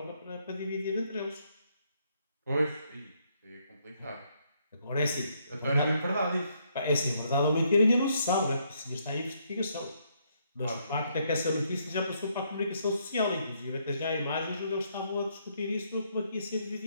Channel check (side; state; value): both; inverted; correlation -0.73